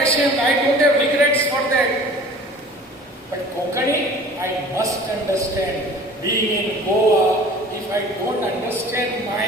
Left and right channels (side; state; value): both; normal; correlation 0.46